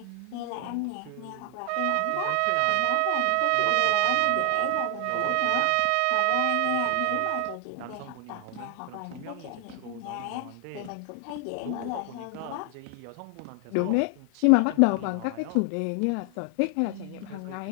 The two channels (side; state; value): both; different; correlation 0.00